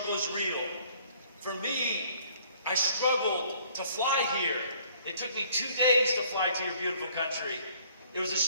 is real. For me, I struggled to fly here. It took me 2 days to fly to your beautiful country. It was a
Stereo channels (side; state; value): both; inverted; correlation -0.58